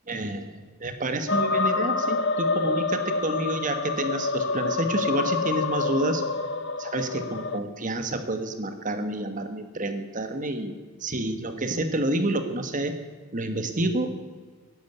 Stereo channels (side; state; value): both; normal; correlation 0.08